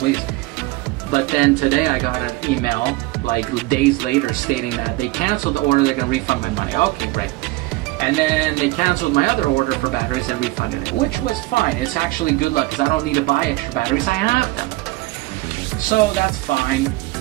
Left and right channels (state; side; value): quieter; left; 20.4 dB